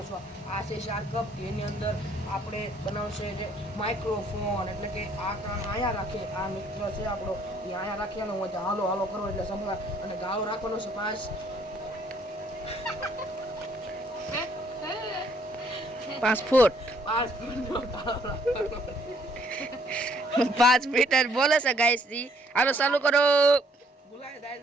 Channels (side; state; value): both; normal; correlation 0.65